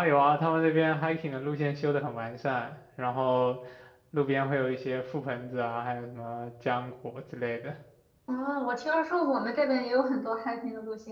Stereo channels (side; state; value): both; identical; correlation 1.00